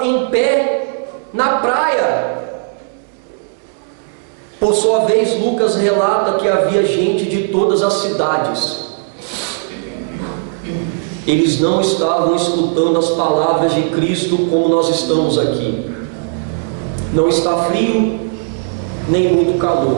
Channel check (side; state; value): left; silent; 66 dB below the other